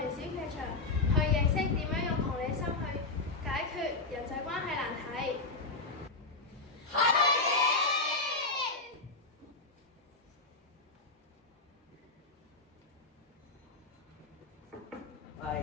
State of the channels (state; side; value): quieter; right; 3.5 dB